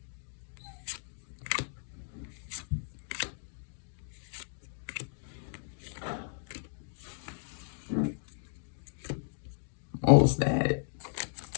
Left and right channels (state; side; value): silent; right; digital silence